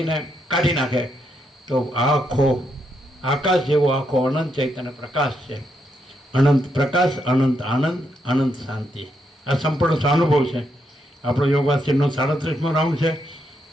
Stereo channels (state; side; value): normal; both; correlation 0.79